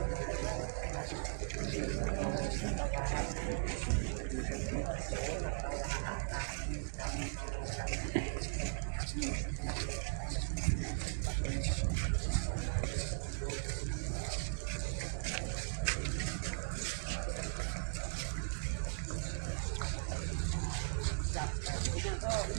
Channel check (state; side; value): silent; left; digital silence